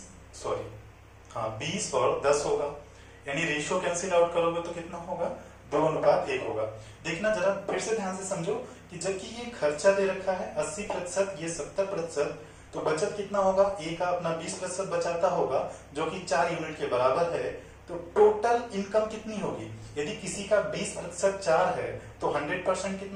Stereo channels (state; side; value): identical; both; correlation 1.00